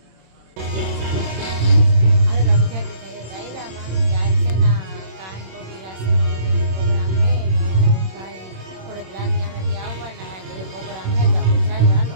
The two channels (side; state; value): left; late; 26 ms